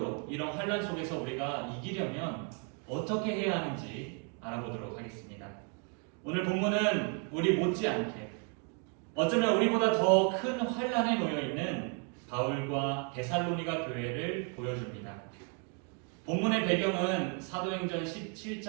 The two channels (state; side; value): quieter; left; 36.7 dB